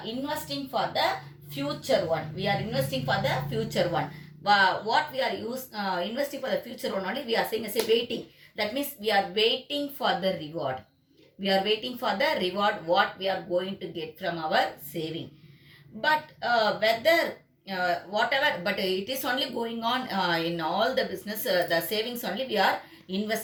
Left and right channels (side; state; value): both; identical; correlation 1.00